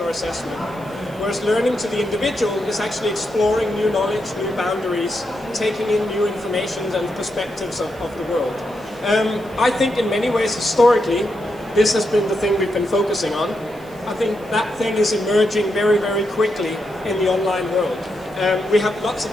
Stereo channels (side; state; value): right; noise; hiss, 26 dB below the sound